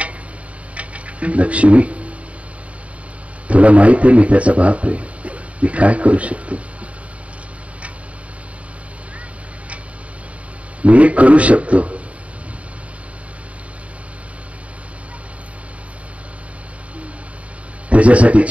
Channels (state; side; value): late; left; 0.065 ms